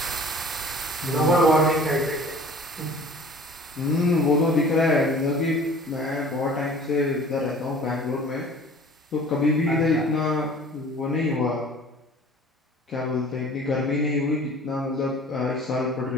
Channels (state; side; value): normal; both; correlation 0.47